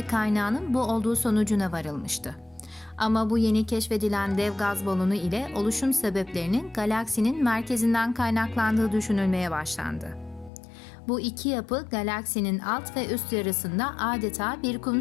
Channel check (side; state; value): right; drops out; at 10.5 s